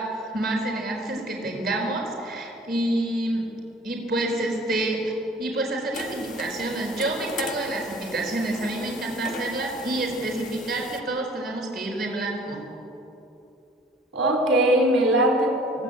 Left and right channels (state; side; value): normal; both; correlation 0.51